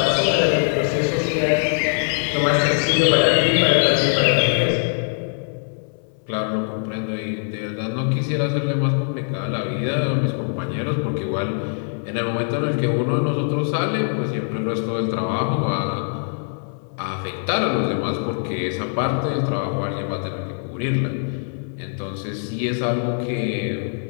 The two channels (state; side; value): silent; right; 64 dB below the other